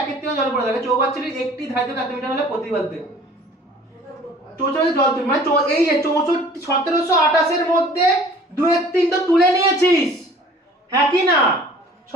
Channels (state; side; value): normal; both; correlation 0.49